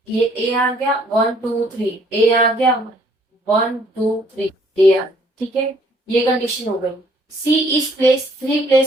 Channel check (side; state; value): both; normal; correlation 0.62